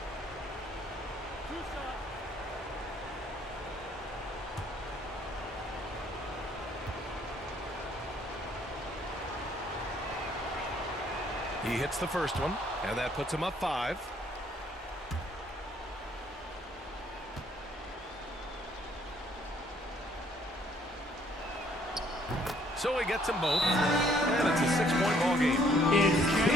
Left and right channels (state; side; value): normal; both; correlation 0.64